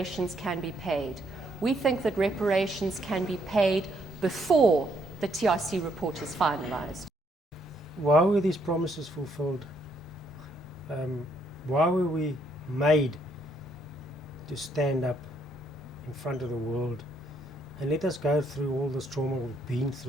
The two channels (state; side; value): normal; both; correlation 0.72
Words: can be paid. We think that reparations can be paid before the TRC report is finalized. Why were these promises fulfilled? Why were we made to stand up in front of the world and let us go through all this trauma we've been